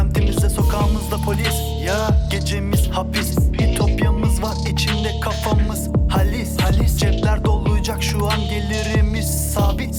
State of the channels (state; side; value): identical; both; correlation 1.00